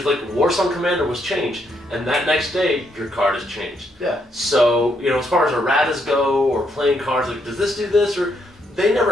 like Warsong Commander was changed, and that next day your card is changed. Yeah. So as far as erratas go or playing cards, like does this do this or they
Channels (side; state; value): both; normal; correlation 0.75